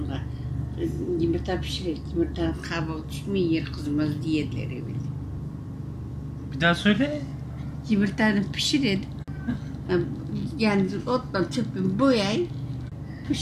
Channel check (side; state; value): both; identical; correlation 1.00